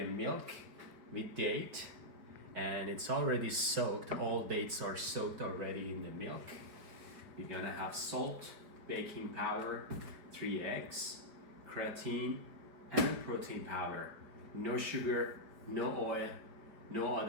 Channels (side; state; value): left; late; 4.9 ms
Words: milk with date, and it's already soaked. All dates are soaked already in the milk. You're gonna have salt, baking powder, 3 eggs, creatine, and protein powder. No sugar, no oil, no